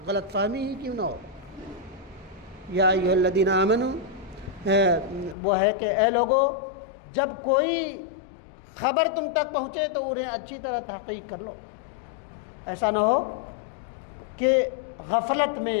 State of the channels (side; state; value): right; drops out; at 5.4 s